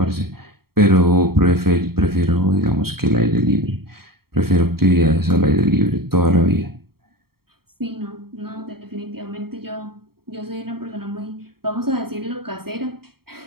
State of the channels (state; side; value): late; left; 0.94 ms